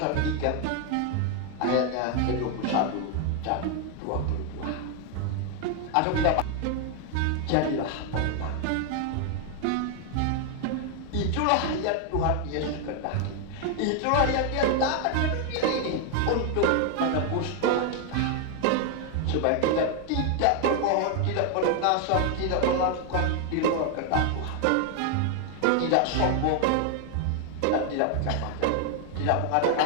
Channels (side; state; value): both; different; correlation 0.01